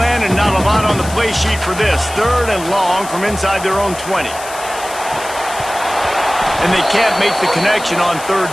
and not a lot on the play sheet for this. 3rd and long from inside their own 20. And they can't make the connection on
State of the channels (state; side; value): noise; left; hiss, 13 dB below the sound